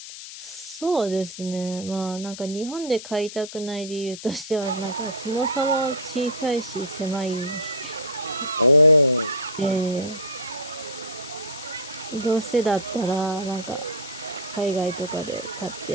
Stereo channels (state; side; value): noise; left; hiss, 12 dB below the sound